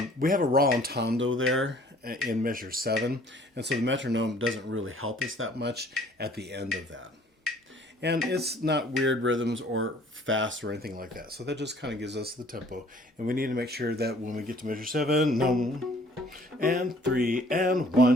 We have a rallentando there in measure 7, and so the metronome doesn't really help us that much at the end of that. And it's not weird rhythms or fast or anything like that. So that just kind of gives us the tempo. And we need to make sure that when we get to measure 7, and 3, and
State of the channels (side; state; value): both; normal; correlation 0.56